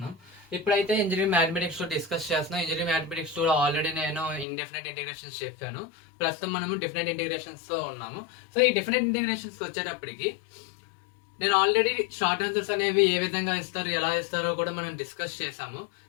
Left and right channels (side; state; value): right; drops out; at 4.5 s